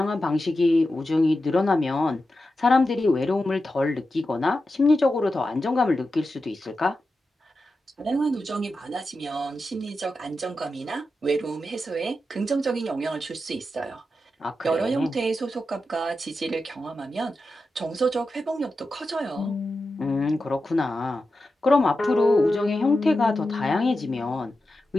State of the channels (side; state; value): both; normal; correlation 0.90